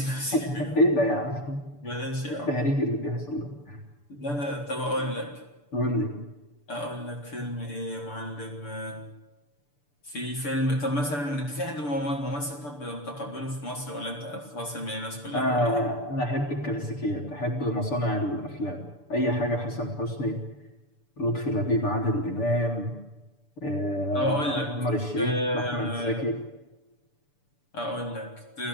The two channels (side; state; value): right; late; 6.9 ms